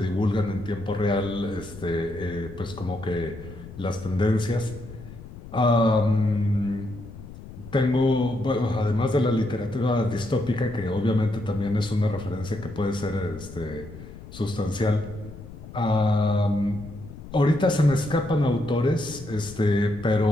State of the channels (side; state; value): left; noise; rumble, 15 dB below the sound